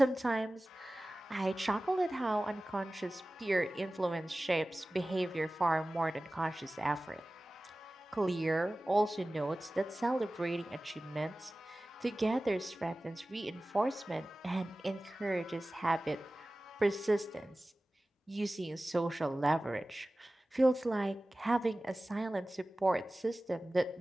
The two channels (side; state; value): both; normal; correlation 0.97